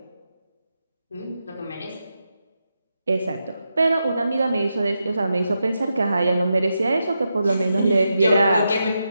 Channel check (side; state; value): both; inverted; correlation -0.86